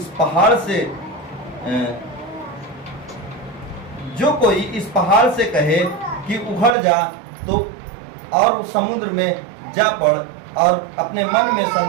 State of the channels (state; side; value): drops out; left; at 6.8 s